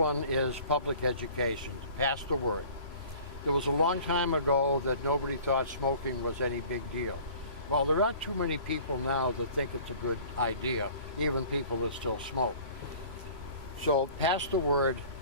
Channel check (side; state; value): left; late; 3.0 ms